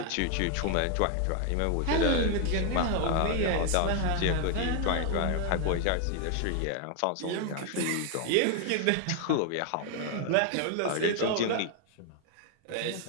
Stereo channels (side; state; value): both; different; correlation 0.00